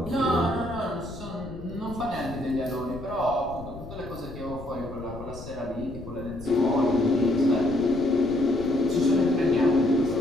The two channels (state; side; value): noise; left; rumble, 14 dB below the sound